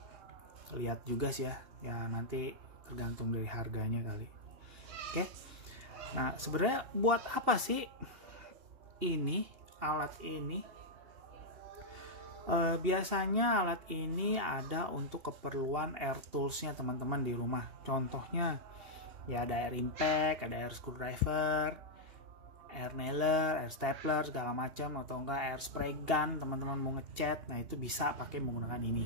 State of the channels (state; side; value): late; left; 2.8 ms